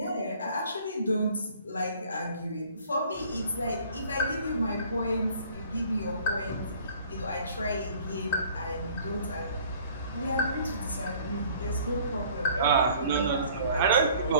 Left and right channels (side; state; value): both; inverted; correlation -0.53